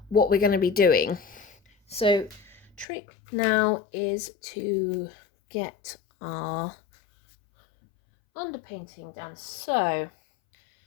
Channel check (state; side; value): drops out; right; at 2.9 s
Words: what we're going to be doing. So trick now is to get our underpainting done. So